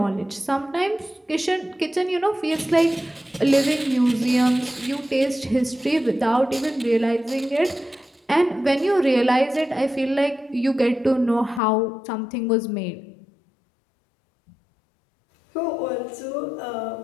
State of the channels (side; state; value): right; drops out; at 11.6 s